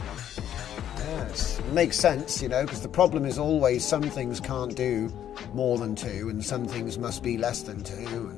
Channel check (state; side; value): quieter; right; 10.5 dB